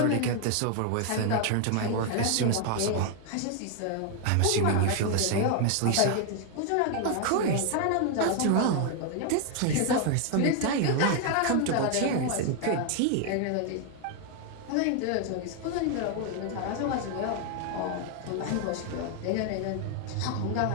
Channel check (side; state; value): both; different; correlation 0.00